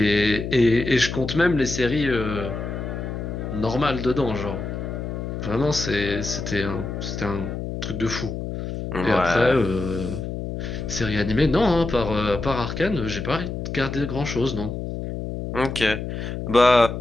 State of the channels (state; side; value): noise; left; hum, 5 dB below the sound